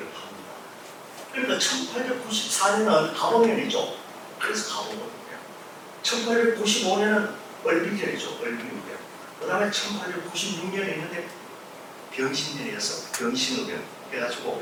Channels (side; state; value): both; identical; correlation 1.00